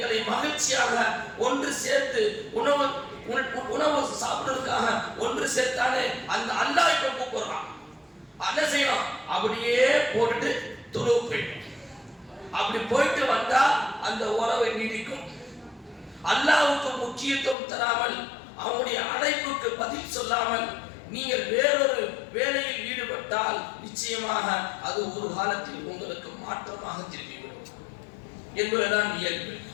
மகிழ்ச்சியாக ஒன்று சேர்த்து உணவு சாப்பிடுறதுக்காக ஒன்று சேர்த்தாலே அந்த அல்லாஹ் இப்ப கூப்பிடுறான். என்ன செய்யணும்? அப்படியே போட்டுட்டு தொழுவு போயிடும். அப்படி போயிட்டு வந்தா அந்த உறவை நீடிக்கும். அல்லாஹ்வுக்கு முக்கியத்துவம் தராமல், அவனுடைய அழைப்புக்கு பதில் சொல்லாமல் நீங்கள் வேறொரு வேலையில் ஈடுபட்டால் நிச்சயமாக அது ஒரு காலத்தில் உங்களுக்கு மாற்றமாக திரும்பிவிடும் என்பதுதான் இயல்பு.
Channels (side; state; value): right; drops out; at 17.6 s